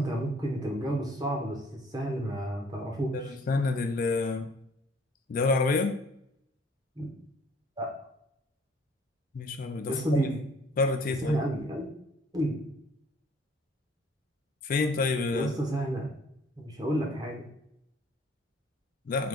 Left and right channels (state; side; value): normal; both; correlation 0.57